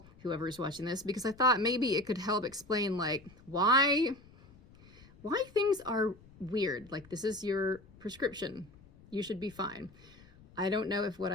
whoever's watching this, because I thought maybe it could help explain like why things are weird. Like, this is your prescription. You should be fine. I don't know if what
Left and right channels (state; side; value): noise; left; rumble, 24 dB below the sound